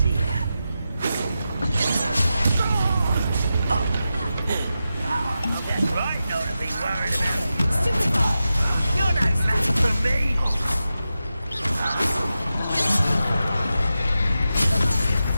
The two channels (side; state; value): both; inverted; correlation -0.91